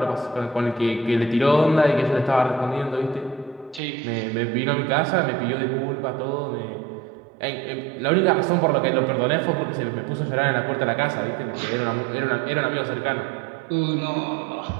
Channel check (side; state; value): left; drops out; at 3.8 s